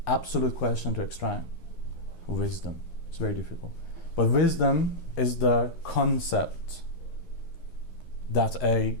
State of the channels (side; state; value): right; late; 11 ms